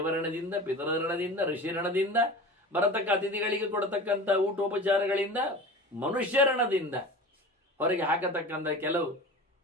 ಪಿತೃಋಣದಿಂದ, ಋಷಿಋಣದಿಂದ, ಬರತಕ್ಕ ಅತಿಥಿಗಳಿಗೆ ಕೊಡತಕ್ಕಂಥ ಊಟೋಪಚಾರಗಳಿಂದ, ಮನುಷ್ಯಋಣದಿಂದ, ಹೊರಗೆ ಹಾಕತಕ್ಕಂಥ ಕೆಲವು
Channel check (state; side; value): normal; both; correlation 0.35